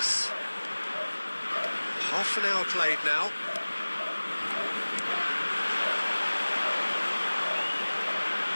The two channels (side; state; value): both; inverted; correlation -1.00